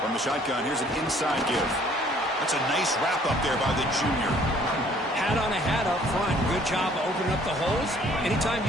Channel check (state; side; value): normal; both; correlation 0.58